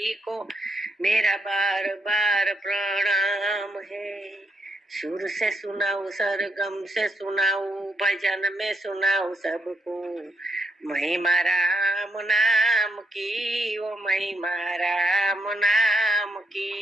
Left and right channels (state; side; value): normal; both; correlation 0.79